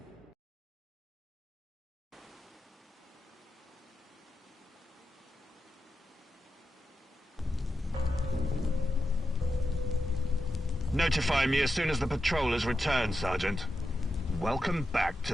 Notify me as soon as the patrol has returned, Sergeant. Welcome back to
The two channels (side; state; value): both; normal; correlation 0.89